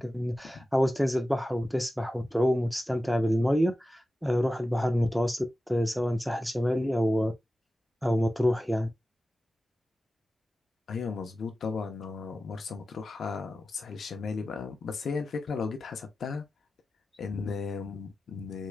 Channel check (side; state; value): both; normal; correlation 0.94